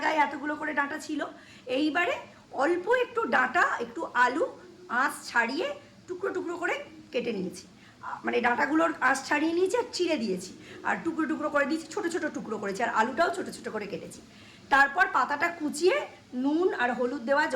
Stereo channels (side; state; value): both; identical; correlation 1.00